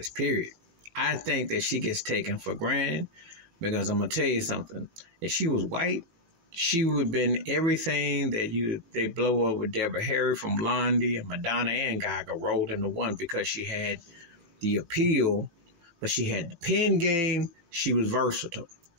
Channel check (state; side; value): late; left; 18 ms